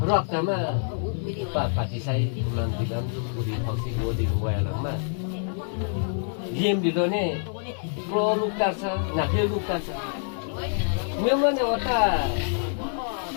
Rock nama pati saya ulang bilang puri paksi gua di luar lama. Game di done pro luka sa, nak luka sa. Member na wata.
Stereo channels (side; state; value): right; silent; digital silence